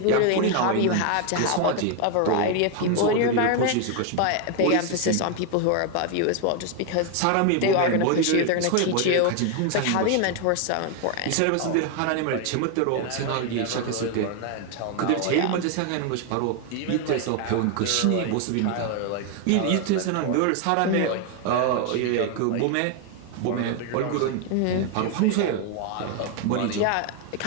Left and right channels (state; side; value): different; both; correlation 0.01